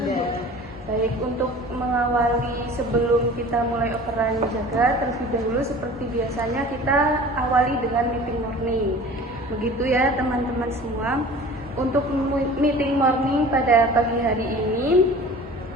Bu? Baik, untuk mengawali sebelum kita mulai operan jaga, terlebih dahulu seperti biasanya kita awali dengan meeting morning. Begitu ya teman-teman semua. Untuk meeting morning pada pagi hari ini,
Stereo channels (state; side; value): normal; both; correlation 0.42